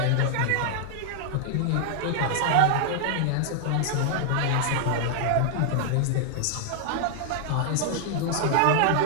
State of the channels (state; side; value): different; both; correlation 0.00